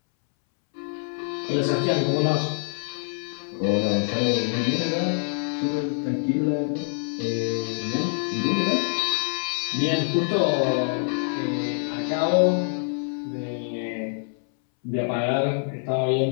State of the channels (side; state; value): right; silent; 62 dB below the other